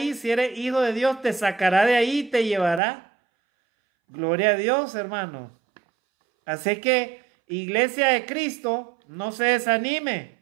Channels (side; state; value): left; drops out; at 2.8 s